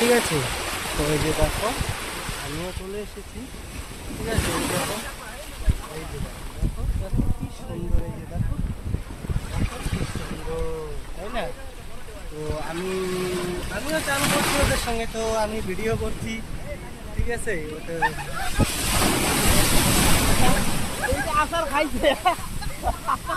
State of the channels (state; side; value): identical; both; correlation 1.00